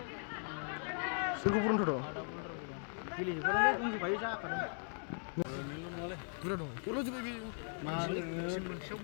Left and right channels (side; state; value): right; silent; 52 dB below the other